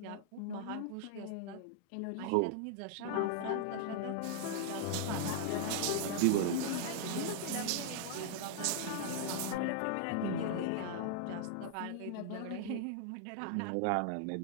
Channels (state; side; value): different; both; correlation -0.01